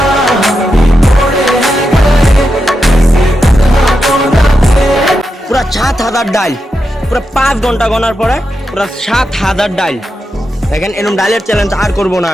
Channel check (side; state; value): both; normal; correlation 0.87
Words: পুরো 7000 ডাইল, পুরো 5 ঘন্টা গোনার পরে পুরো 7000 ডাইল। দেখেন এরকম ডাইলের চ্যালেঞ্জ আর করবো না